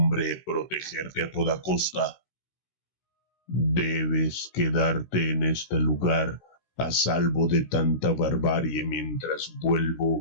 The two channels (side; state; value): right; late; 16 ms